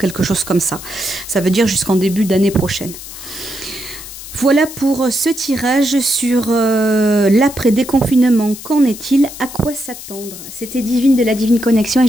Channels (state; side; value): noise; left; hiss, 13 dB below the sound